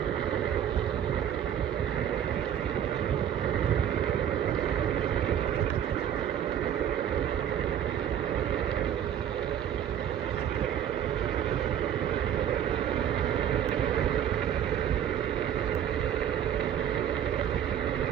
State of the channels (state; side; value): quieter; left; 9.8 dB